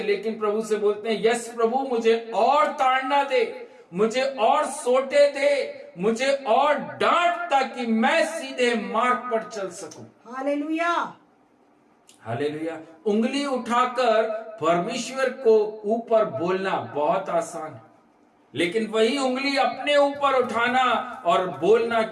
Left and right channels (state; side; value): identical; both; correlation 1.00